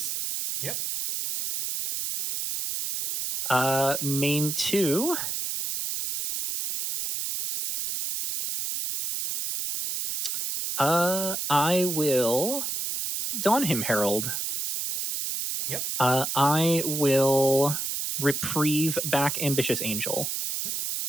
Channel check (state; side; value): noise; right; hiss, 3 dB below the sound